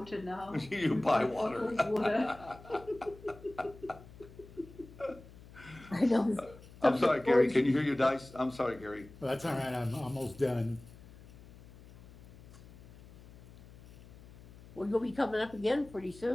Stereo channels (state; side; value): noise; left; hum, 20 dB below the sound